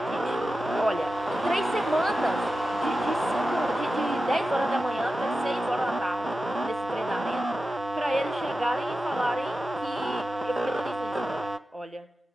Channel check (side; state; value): both; normal; correlation 0.93